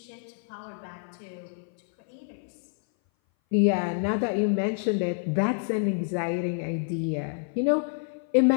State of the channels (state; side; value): silent; right; 57 dB below the other